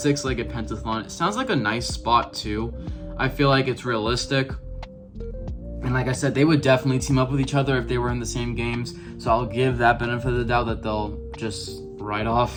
pentathlon, it sounds like a nice spot too. I feel like it's realistic. And like I said, they would definitely team up with each other if they were in the same games. So I'll give that benefit of the doubt that they'll just ride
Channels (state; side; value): identical; both; correlation 1.00